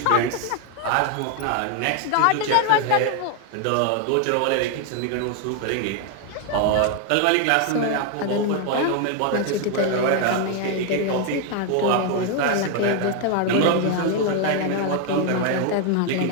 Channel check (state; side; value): different; both; correlation 0.00